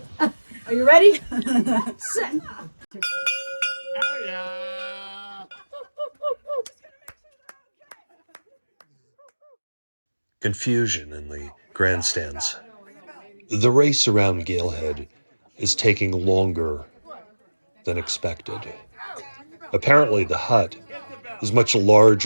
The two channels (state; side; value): inverted; both; correlation -1.00